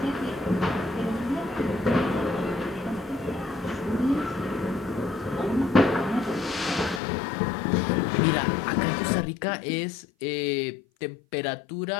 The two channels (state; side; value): drops out; right; at 7.0 s